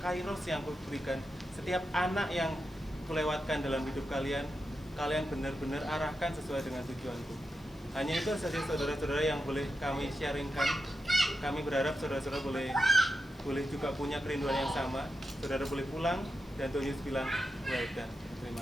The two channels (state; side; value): noise; left; hiss, 28 dB below the sound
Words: kairos yang kuberikan, setiap anak yang kulewatkan dalam hidup kalian, kalian benar-benar arahkan sesuai dengan tujuanku. Hanya itu saja saudara-saudara yang boleh kami sharingkan. Kami berharap saudara-saudara boleh juga punya kerinduan yang sama. Saudara boleh pulang dan Tuhan Yesus bilang, well done. Terima